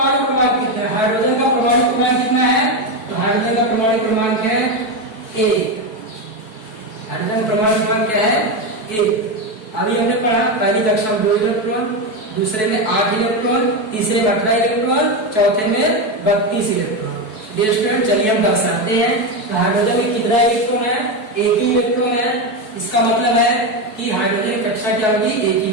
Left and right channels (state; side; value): late; right; 4.6 ms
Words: क्रमांक कितना है। हाइड्रोजन का परमाणु क्रमांक कितना है? तो हाइड्रोजन का परमाणु क्रमांक है 1। हाइड्रोजन परमाणु क्रमांक क्या है? 1। अभी हमने पढ़ा पहली कक्षा में 2 इलेक्ट्रॉन, दूसरे में 8 इलेक्ट्रॉन, तीसरे में 18 इलेक्ट्रॉन, चौथे में 32 इलेक्ट्रॉन। डियर स्टूडेंट, चलिए हम दर्शाते हैं। तो हाइड्रोजन में कितना इलेक्ट्रॉन है? 1 ही इलेक्ट्रॉन है। इसका मतलब है कि हाइड्रोजन की कक्षा क्या होगी? 1 ही